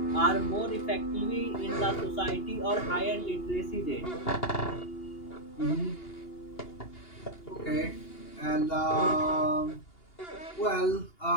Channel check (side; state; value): right; late; 2.8 ms